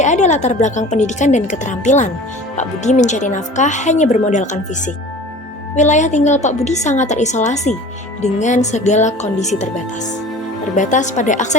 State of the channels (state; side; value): normal; both; correlation 0.42